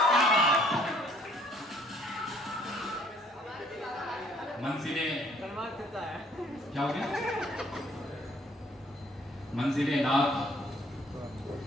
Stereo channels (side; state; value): both; normal; correlation 0.60